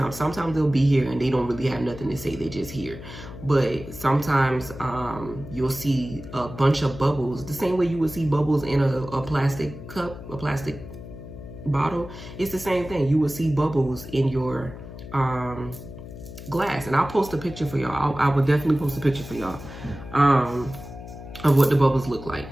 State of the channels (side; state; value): left; noise; hum, 13 dB below the sound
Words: Sometimes they'll be here and they don't really have nothing to say. They just here. But sometimes you'll see a bunch of bubbles, the same way you would see bubbles in a plastic cup, a plastic bottle. It's the same thing. You will see bubbles in your glass, and I'll post a picture for y'all. I will definitely post a picture for y'all of what the bubbles look like.